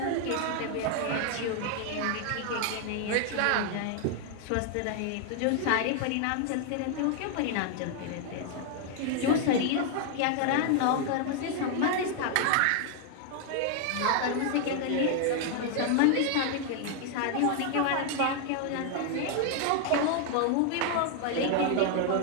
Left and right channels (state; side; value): different; both; correlation 0.00